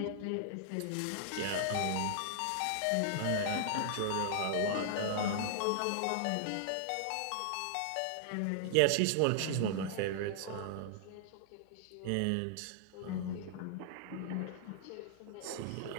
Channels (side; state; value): both; different; correlation -0.01